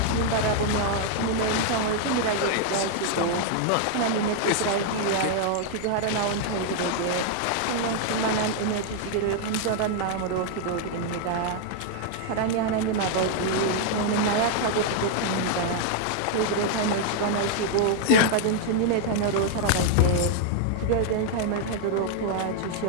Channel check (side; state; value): both; different; correlation 0.00